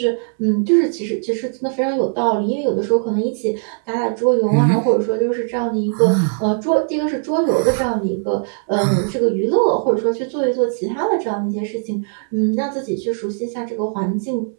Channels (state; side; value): silent; left; 63 dB below the other